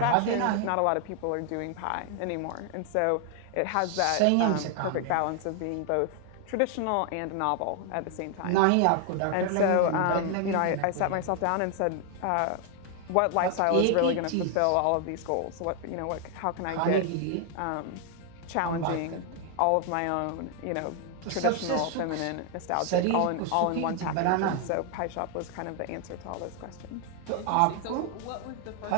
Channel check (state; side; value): different; both; correlation 0.00